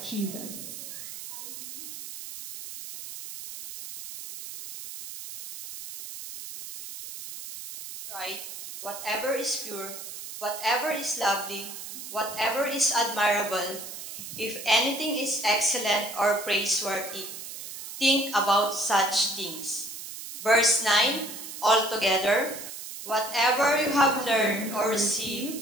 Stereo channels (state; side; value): noise; right; hiss, 10 dB below the sound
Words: Jesus. Right? Whatever is pure, whatever is lovely, whatever is admirable, if anything is excellent or praiseworthy, think about such things. Verse 9, altogether, whatever you have learned or